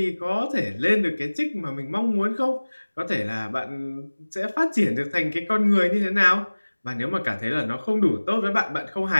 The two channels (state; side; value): inverted; both; correlation -1.00